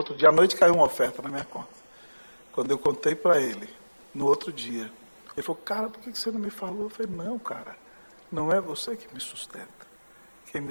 dia, à noite caiu uma oferta na minha conta. Quando eu contei para ele, no outro dia, ele falou, cara, por que você não me falou? Eu falei, não, cara, não é você que me sustenta. Quem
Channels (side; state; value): both; inverted; correlation -1.00